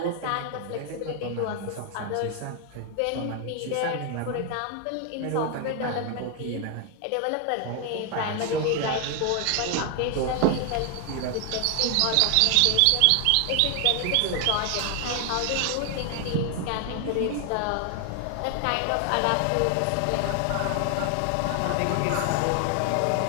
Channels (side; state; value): both; different; correlation 0.00